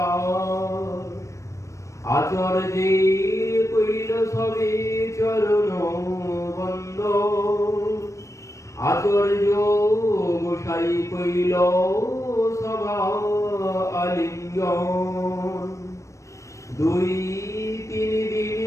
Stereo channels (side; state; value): right; late; 0.15 ms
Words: আচার্যে কইল সবে চরণ বন্দন, আচার্য গোসাই কইল সভা আলিঙ্গন। দুই তিন দিন